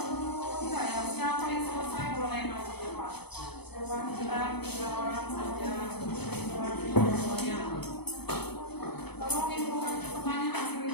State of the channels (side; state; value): right; late; 0.98 ms